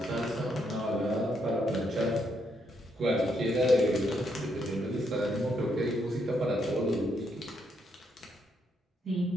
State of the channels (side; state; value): both; normal; correlation 0.76